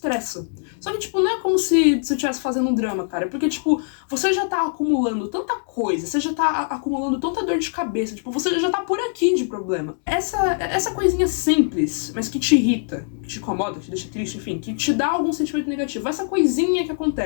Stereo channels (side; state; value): right; silent; digital silence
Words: Só que, tipo, não é como se você estivesse fazendo um drama, cara. Porque, tipo, você já tá acumulando tanta coisa, você já tá acumulando tanta dor de cabeça, tipo, você já tá por aqui de problema. Essa coisinha simples, mas que te irrita, que te incomoda, que te deixa triste, enfim, que te dá algum sentimento negativo, essa coisinha que